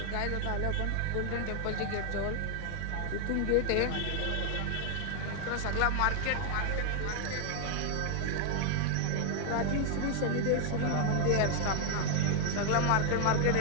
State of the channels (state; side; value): different; both; correlation 0.01